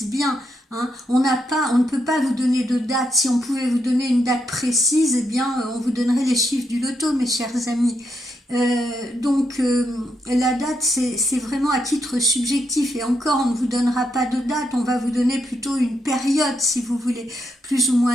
bien. On ne peut pas vous donner de date. Si on pouvait vous donner une date précise, eh bien, on vous donnerait les chiffres du loto, mes chers amis. Donc la date c'est vraiment à titre subjectif, et encore on ne vous donnera pas de date, on va vous donner plutôt une période, si vous voulez, plus ou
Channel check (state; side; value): normal; both; correlation 0.80